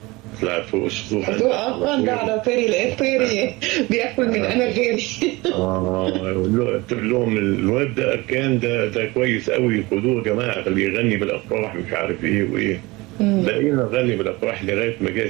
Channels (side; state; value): left; quieter; 22.6 dB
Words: طلعت فوق السطوح. ده على طيري لقيت طيري بياكل من انا غيري. قلت لهم الواد ده اركان ده كويس قوي خدوه يا جماعه خليه يغني بالافراح مش عارف ايه وايه. بقينا نغني بالافراح لغايه ما جاء